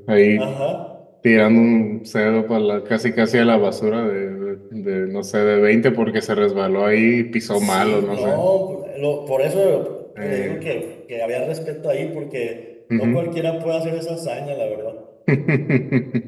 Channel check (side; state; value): both; identical; correlation 1.00